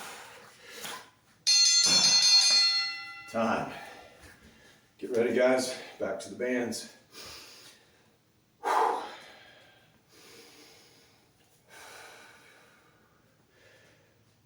Time. Get ready, guys. Back to the bands.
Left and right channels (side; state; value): both; identical; correlation 1.00